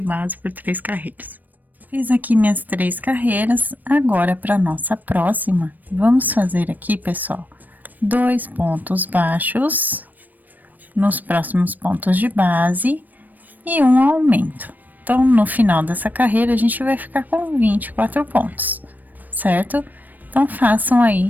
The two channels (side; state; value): left; late; 0.086 ms